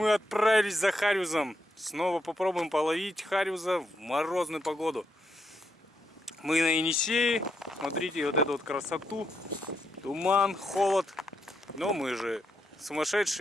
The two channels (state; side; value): normal; both; correlation 0.80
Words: отправились за хариузом. Снова попробуем половить хариуза в морозную погоду. Мы на Енисее. Смотрите вот эту вот красоту. Туман, холод. Но мы же